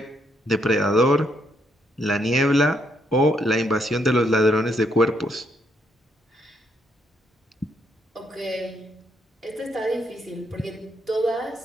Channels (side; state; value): both; normal; correlation 0.75